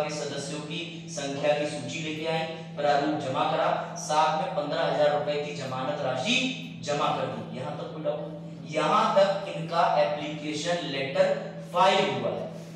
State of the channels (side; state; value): both; identical; correlation 1.00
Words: के सदस्यों की संख्या की सूची लेके आए, प्रारूप जमा करा, साथ में 15,000 रुपए की जमानत राशि जमा कर दी। यहां तक कोई डाउट? यहां तक इनका एप्लीकेशन लेटर फाइल हुआ है।